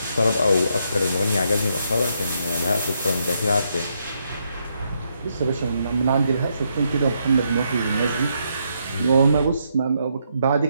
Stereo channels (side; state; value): both; inverted; correlation -0.78